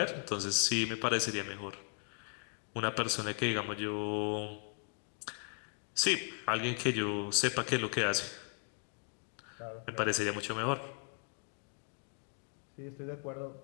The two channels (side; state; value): right; quieter; 38.5 dB